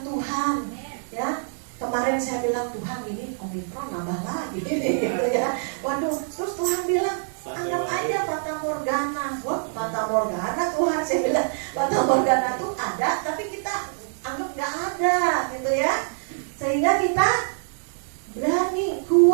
Tuhan ya. Kemarin saya bilang Tuhan ini Omikron nambah lagi gitu ya. Waduh, terus Tuhan bilang, anggap aja Fata Morgana. Wah, Fata Morgana Tuhan, saya bilang Fata Morgana itu ada, tapi kita anggap gak ada gitu ya. Sehingga kita berani,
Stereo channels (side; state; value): left; silent; digital silence